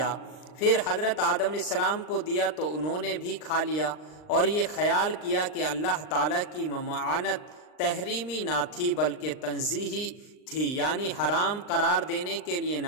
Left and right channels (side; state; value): right; late; 39 ms